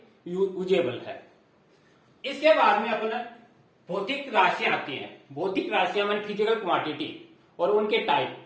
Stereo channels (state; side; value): identical; both; correlation 1.00